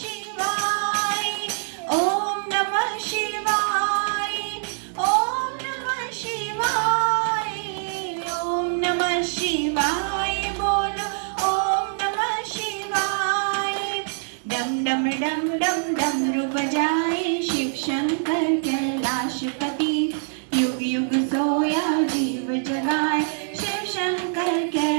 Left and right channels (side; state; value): left; silent; digital silence